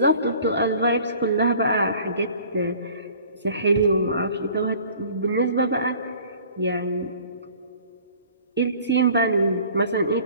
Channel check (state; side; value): inverted; both; correlation -0.50